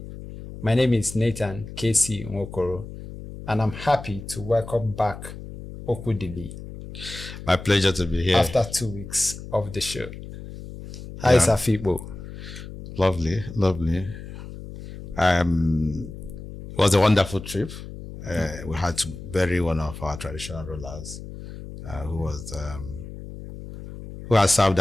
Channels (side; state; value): left; noise; hum, 12 dB below the sound